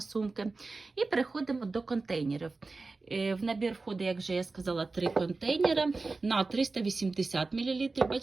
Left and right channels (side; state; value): left; quieter; 3.7 dB